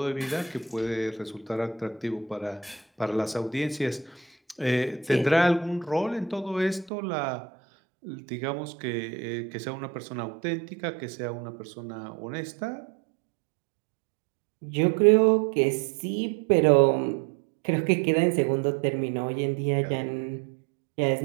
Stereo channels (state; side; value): drops out; left; at 6.9 s